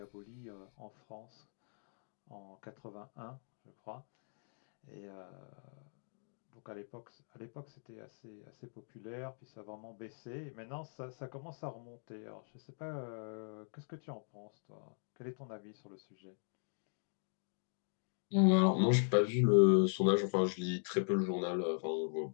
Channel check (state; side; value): silent; right; digital silence